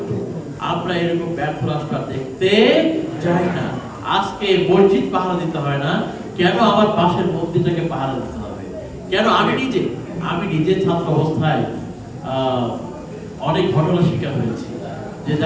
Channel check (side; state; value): both; identical; correlation 1.00